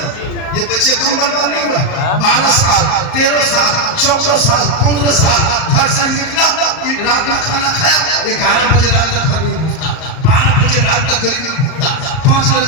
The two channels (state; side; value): late; right; 38 ms